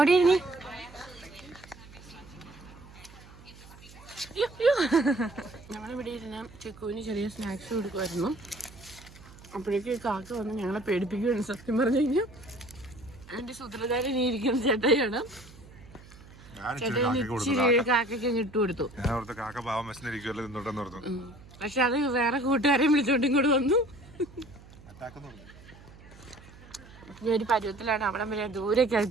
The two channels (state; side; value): noise; right; hum, 20 dB below the sound